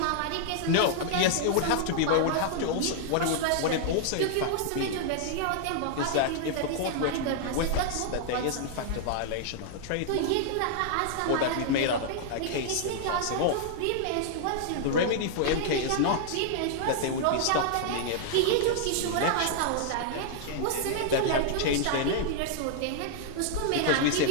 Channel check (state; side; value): different; both; correlation -0.01